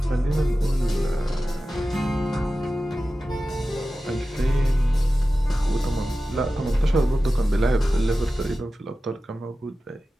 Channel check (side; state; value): both; normal; correlation 0.94